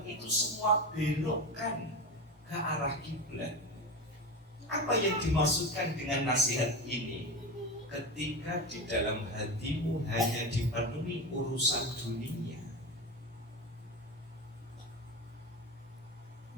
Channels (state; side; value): normal; both; correlation 0.22